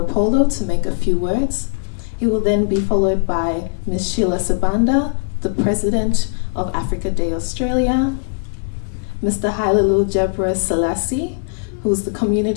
to make a few words. He will then be followed by Ms. Sheila Sabanda, the President of Africa Day Australia, Mr. Hailalu Jebra Selassie, who is the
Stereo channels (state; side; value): silent; right; 57 dB below the other